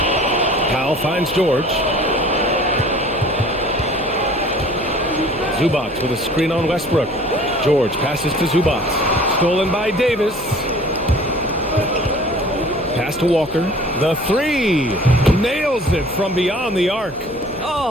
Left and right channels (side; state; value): left; noise; hum, 21 dB below the sound